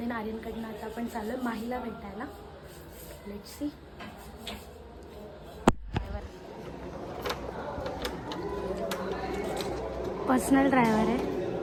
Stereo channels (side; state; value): both; identical; correlation 1.00